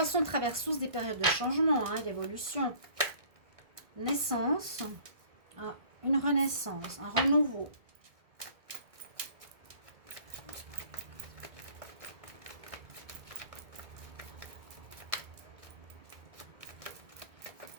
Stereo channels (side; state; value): left; late; 1.5 ms